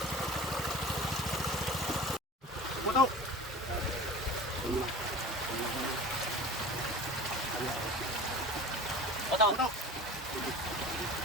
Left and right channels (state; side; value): normal; both; correlation 0.37